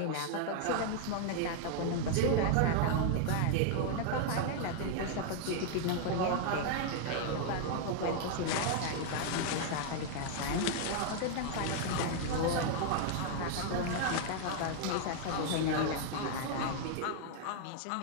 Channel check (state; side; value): different; both; correlation 0.00